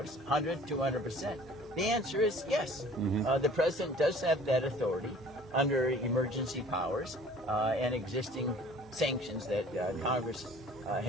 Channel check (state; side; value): normal; both; correlation 0.50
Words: 100, 200%, the answer is yes. The president does have that authority under emergency powers and existing sanctions that Congress